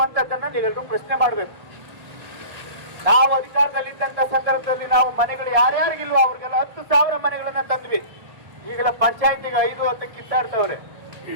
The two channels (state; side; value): late; left; 1.6 ms